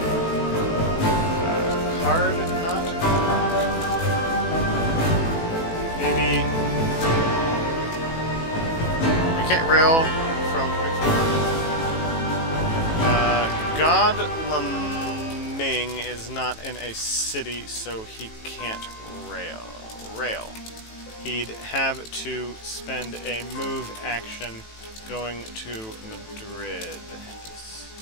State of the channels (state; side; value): late; right; 18 ms